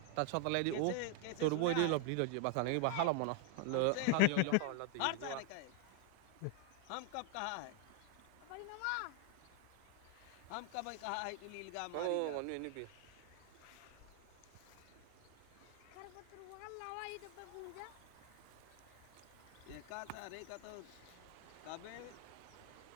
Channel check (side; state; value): both; different; correlation 0.00